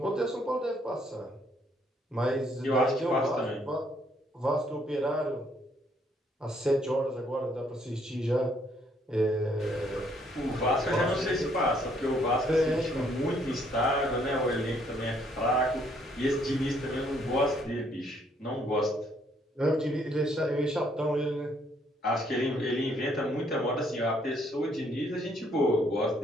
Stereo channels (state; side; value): normal; both; correlation 0.68